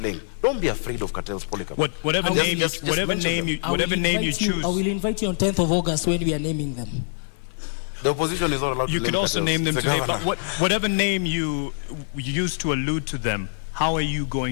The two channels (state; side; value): silent; right; digital silence